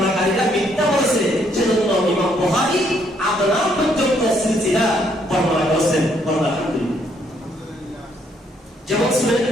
মিথ্যা বলেছে, সেজন্য ইমাম বুখারী আদনান পর্যন্ত সিলসিলা বর্ণনা করেছেন। আলহামদুলিল্লাহ। যেমন শুনেন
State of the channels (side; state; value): both; normal; correlation 0.70